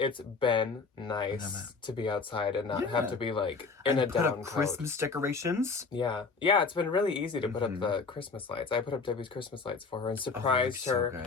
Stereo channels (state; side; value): quieter; right; 4.5 dB